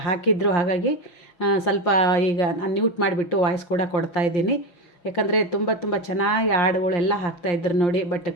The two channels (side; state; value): right; late; 5.7 ms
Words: ಹಾಕಿದ್ರು. ಹಾಗಾಗಿ ಸ್ವಲ್ಪ ಈಗ ನಾನು ಮ್ಯೂಟ್ ಮಾಡಿಬಿಟ್ಟು ವಾಯ್ಸ್ ಕೂಡ ಕೊಡ್ತಾಯಿದ್ದೀನಿ. ಯಾಕಂದರೆ ತುಂಬ ಚೆನ್ನಾಗಿ ಹಾಡುಗಳೆಲ್ಲ ಹಾಕ್ತಾಯಿದ್ರು ನೋಡಿ. ಬಟ್